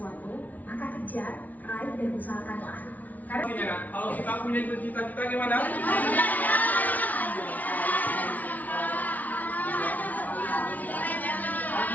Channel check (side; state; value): right; late; 0.076 ms